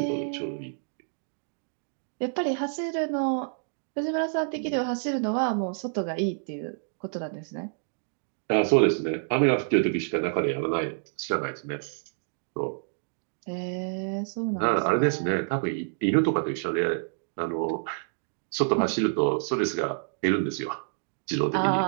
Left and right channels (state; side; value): silent; left; digital silence